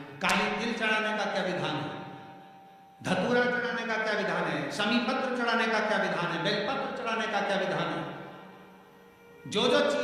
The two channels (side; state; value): both; identical; correlation 1.00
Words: काली तिल चढ़ाने का क्या विधान है, धतूरा चढ़ाने का क्या विधान है, शमी पत्र चढ़ाने का क्या विधान है, बेलपत्र चढ़ाने का क्या विधान है। जो जो